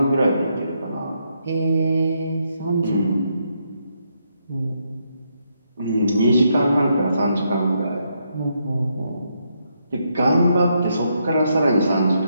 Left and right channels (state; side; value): inverted; both; correlation -0.78